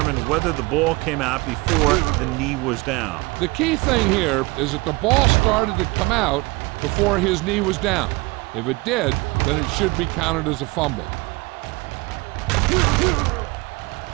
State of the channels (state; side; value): quieter; left; 24.8 dB